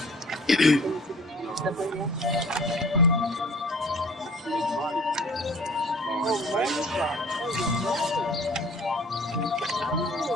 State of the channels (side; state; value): both; normal; correlation 0.50